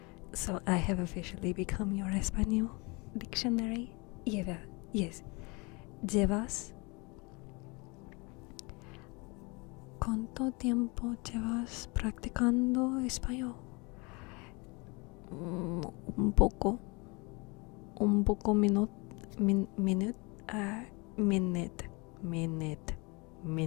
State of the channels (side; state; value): right; quieter; 28.3 dB